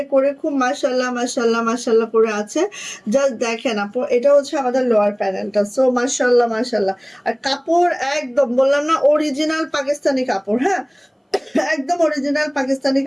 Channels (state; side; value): identical; both; correlation 1.00